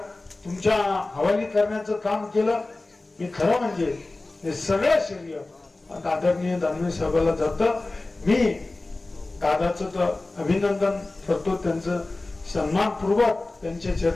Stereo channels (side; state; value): right; quieter; 3.1 dB